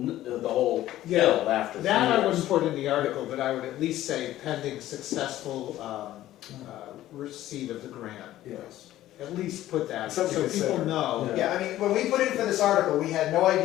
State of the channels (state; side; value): quieter; right; 14.2 dB